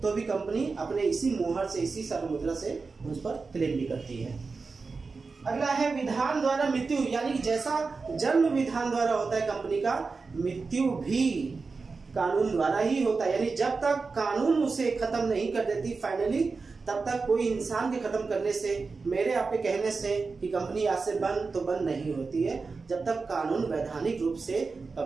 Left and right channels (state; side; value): quieter; left; 4.4 dB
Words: तो भी कंपनी अपने इसी मुहर से, इसी सार मुद्रा से उस पर क्लेम भी करती है। अगला है विधान द्वारा मृत्यु, यानी जैसा जन्म विधान द्वारा होता है कंपनी का, मृत्यु भी कानून द्वारा ही होता है। यानी जब तक कानून उसे खत्म नहीं कर देती फाइनली, तब तक कोई इंसान के खत्म करने से, मेरे आपके कहने से कि कंपनी आज से बंद, तो बंद नहीं होती है जब तक कानून वैधानिक रूप से